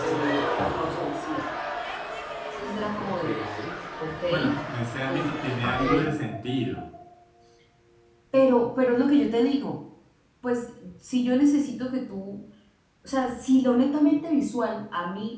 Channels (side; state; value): both; identical; correlation 1.00